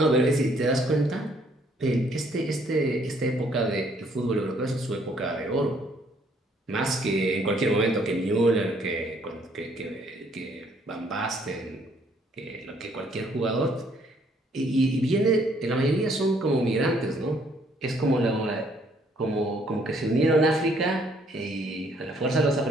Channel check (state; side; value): normal; both; correlation 0.65